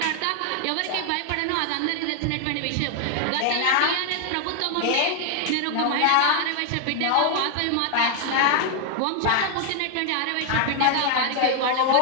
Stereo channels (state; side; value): different; both; correlation 0.00